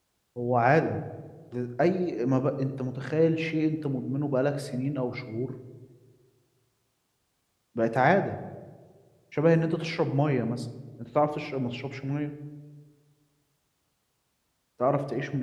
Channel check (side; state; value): both; identical; correlation 1.00